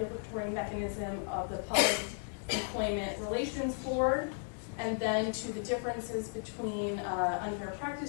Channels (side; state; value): right; silent; 55 dB below the other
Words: mechanism of the Public Employment Relations Board, and then to the differences between unfair